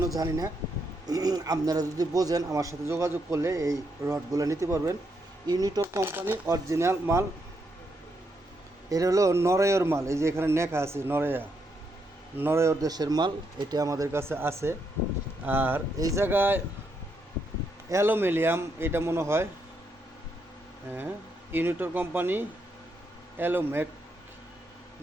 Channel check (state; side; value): normal; both; correlation 0.79